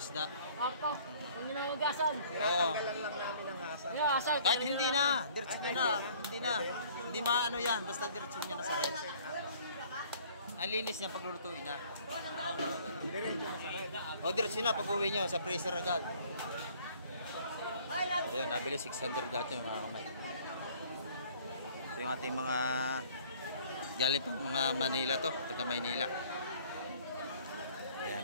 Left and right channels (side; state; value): both; inverted; correlation -0.55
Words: Papa, kung ginawagasan. Oo. Yung asal. Kahit hindi na, diretso nyo na. Hindi na. Hindi maano yan, basta diretso nyo na sa rep. Ang linis niya pag lulutuin na. O diretso na pag uwi nyo, sa freezer agad. Ayun, nabili 600 lahat yung mga kamay. Ito yung ating mga galing pang mga Manila to, taga Maynila. Ayan,